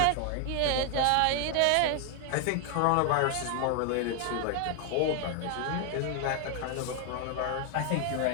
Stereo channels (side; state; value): both; different; correlation 0.00